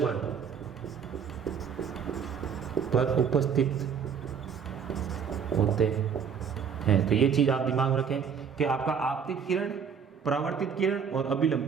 पर उपस्थित होते हैं। तो ये चीज आप दिमाग में रखें कि आपका आपतित किरण, परावर्तित किरण और अभिलंब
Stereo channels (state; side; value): quieter; left; 6.9 dB